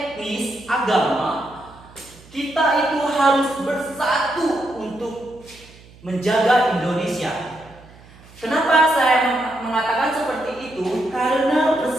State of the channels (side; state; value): right; noise; hum, 23 dB below the sound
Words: agama, kita itu harus bersatu untuk menjaga Indonesia. Kenapa saya mengatakan seperti itu? Karena